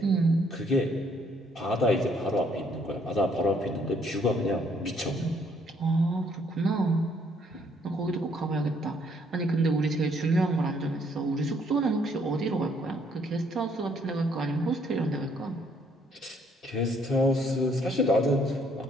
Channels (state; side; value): normal; both; correlation 0.66